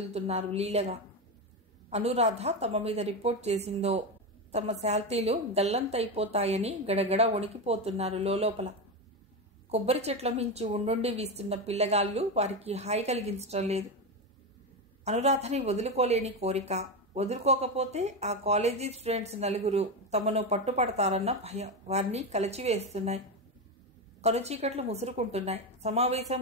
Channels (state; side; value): normal; both; correlation 0.14